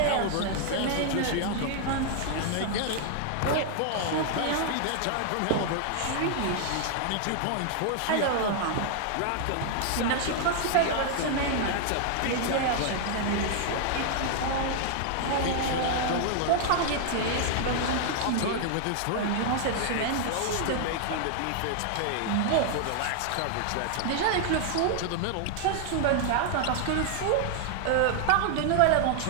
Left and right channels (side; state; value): both; different; correlation 0.00